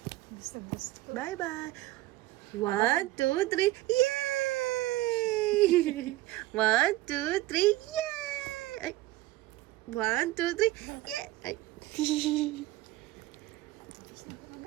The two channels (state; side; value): quieter; left; 17.4 dB